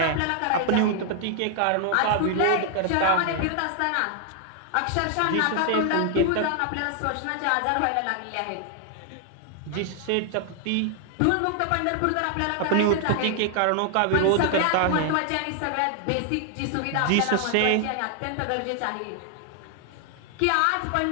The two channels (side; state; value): both; different; correlation 0.00